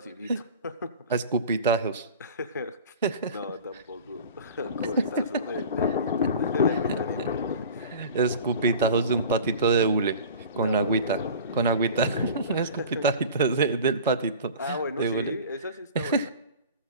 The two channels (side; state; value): both; inverted; correlation -0.39